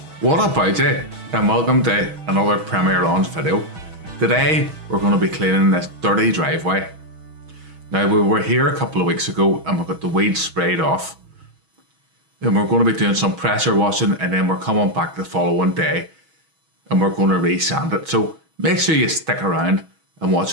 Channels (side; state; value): left; late; 6.2 ms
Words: What about it? And welcome to another Premier Lawns video. Today we're going to be cleaning this dirty driveway. Now we were here a couple of weeks ago and we got the weeds sprayed off. And we're going to be doing some pressure washing and then we're coming back the following day and we're going to re-sand it. So make sure you stick around and